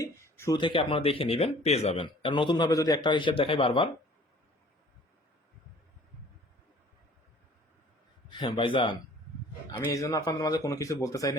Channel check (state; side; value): normal; both; correlation 0.52